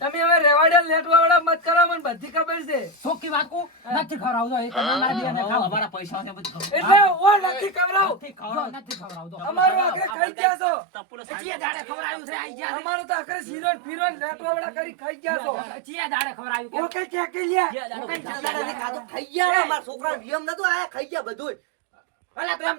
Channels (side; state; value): left; drops out; at 10.1 s